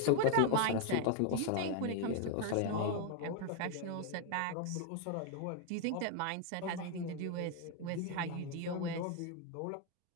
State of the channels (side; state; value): both; different; correlation 0.00